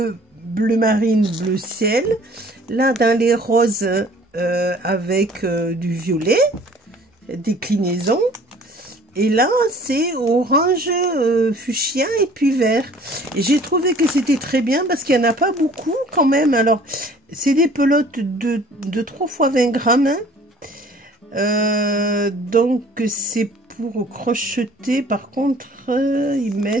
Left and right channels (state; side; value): normal; both; correlation 0.52